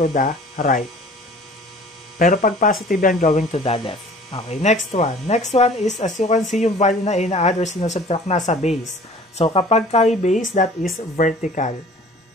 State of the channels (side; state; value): both; normal; correlation 0.48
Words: the right. Pero pag positive yan, going to the left. Okay, next one. Next one is, as you can see, yung value na ina-add or sinusubtract nasa base. So, kapag kay base, that is vertical